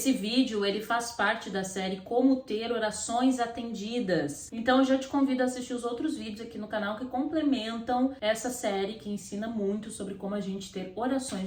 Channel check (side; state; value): both; identical; correlation 1.00